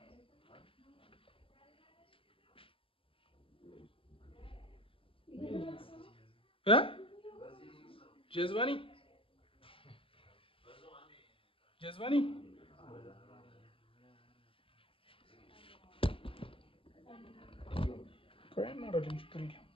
جذباني جذباني كوين مرة اللي مشكرين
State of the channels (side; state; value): right; late; 0.26 ms